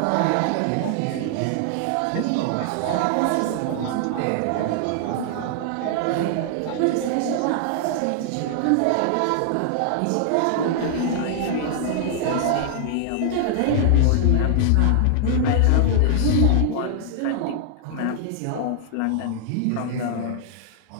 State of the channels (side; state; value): both; different; correlation 0.00